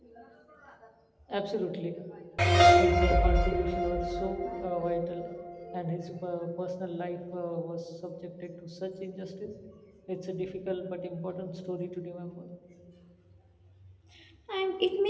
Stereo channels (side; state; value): both; identical; correlation 1.00